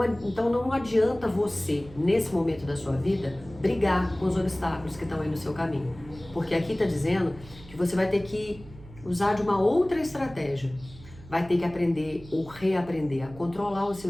não adianta você, nesse momento da sua vida, brigar com os obstáculos que estão aí no seu caminho. Porque aqui está dizendo que você vai ter que usar de uma outra estratégia. Vai ter que aprender ou reaprender a controlar os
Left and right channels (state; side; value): noise; right; hum, 19 dB below the sound